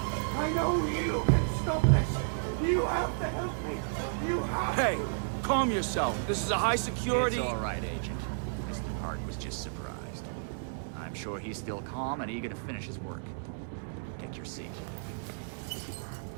I know you can stop this! You have to help me! You have Hey, to! calm yourself. This is a high security... It's all right, Agent. Mr. Park was just surprised. I'm sure he's still calm and eager to finish his work. Take your seat.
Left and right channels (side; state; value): left; silent; digital silence